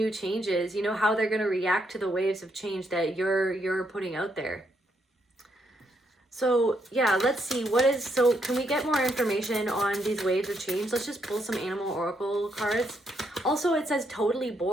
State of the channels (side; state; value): both; normal; correlation 0.76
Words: changes, you know, how they're going to react to the waves of change that you're putting out there. So yeah, let's see so can we get more information on these waves of change? Let's just pull some animal oracle cards. Also, it says totally